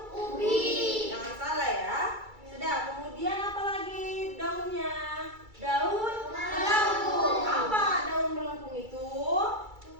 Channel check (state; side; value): late; left; 2.3 ms